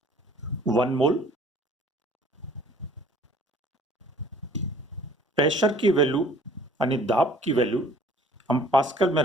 1 mole, pressure की वैल्यू यानी दाब की वैल्यू हम पास्कल में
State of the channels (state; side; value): normal; both; correlation 0.54